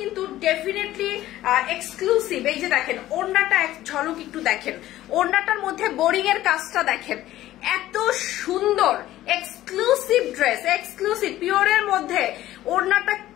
কিন্তু ডেফিনেটলি এক্সক্লুসিভ। এই যে দেখেন ওড়নাটা এক ঝলক একটু দেখেন, ওড়নাটার মধ্যে বোরিং এর কাজটা দেখেন, এত সুন্দর এক্সক্লুসিভ ড্রেস, এক্সক্লুসিভ পিওরের মধ্যে ওড়নাটা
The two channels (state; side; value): quieter; right; 14.6 dB